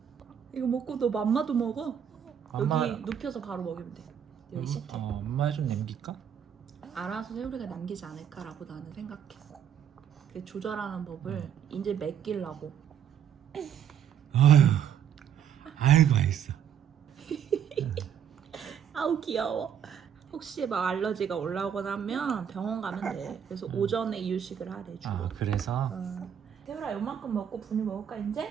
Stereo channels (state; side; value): quieter; left; 8.6 dB